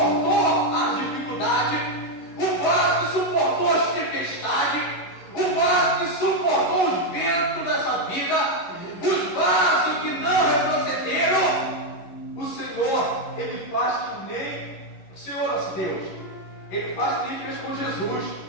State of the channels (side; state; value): right; late; 11 ms